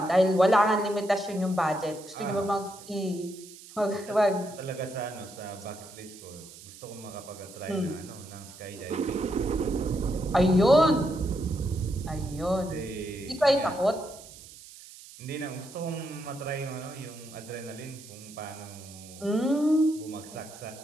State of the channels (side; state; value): right; noise; hiss, 18 dB below the sound